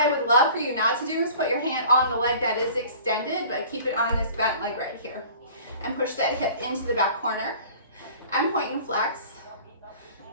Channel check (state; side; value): inverted; both; correlation -0.46